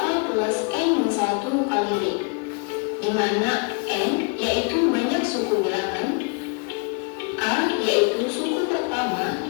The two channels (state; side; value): quieter; right; 35.7 dB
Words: plus n min 1 kali D, di mana n yaitu banyak suku bilangan, A yaitu suku